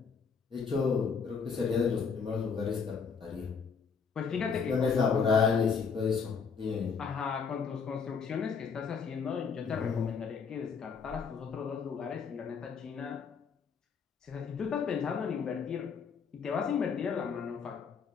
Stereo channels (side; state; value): right; quieter; 5.9 dB